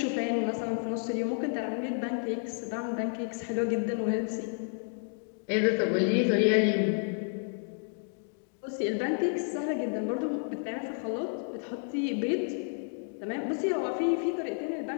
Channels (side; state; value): right; silent; 57 dB below the other